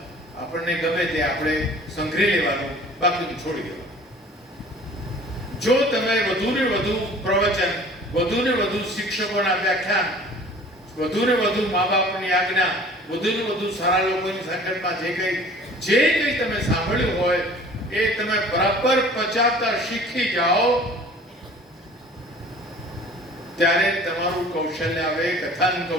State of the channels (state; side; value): normal; both; correlation 0.48